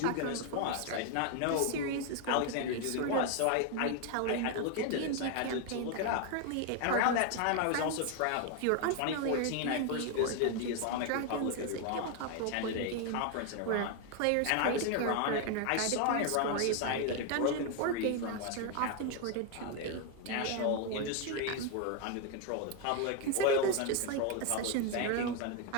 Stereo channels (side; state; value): both; different; correlation 0.01